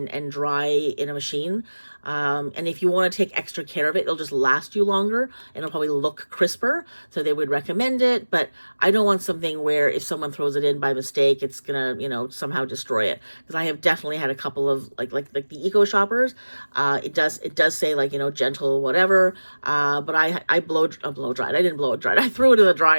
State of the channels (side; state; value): both; inverted; correlation -1.00